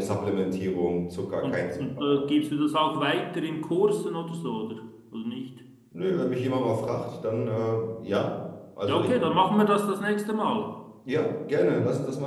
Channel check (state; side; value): identical; both; correlation 1.00